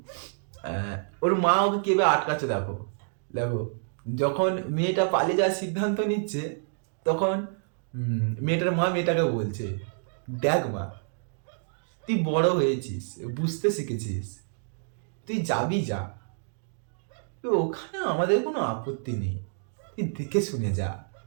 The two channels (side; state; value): left; silent; digital silence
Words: আহ, ওর মা ওকে কেবে আটকাচ্ছে। দেখো দেখো, যখন মেয়েটা পালিয়ে যাওয়ার সিদ্ধান্ত নিচ্ছে, তখন মেয়েটার মা মেয়েটাকে বলছে, দেখ মা, তুই বড় হয়েছিস, বুঝতে শিখেছিস, তুই যাবি যা, তো ওখানে আমাদের কোনো আপত্তি নেই, তুই দেখে শুনে যা।